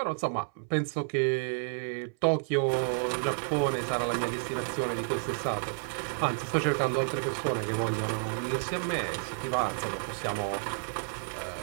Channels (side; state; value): left; silent; 57 dB below the other